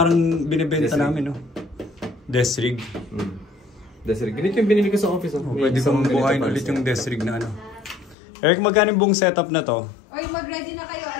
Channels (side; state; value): right; drops out; at 8.2 s